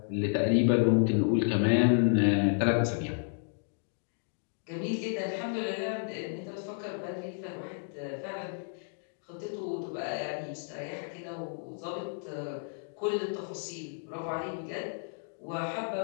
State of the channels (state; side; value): silent; right; digital silence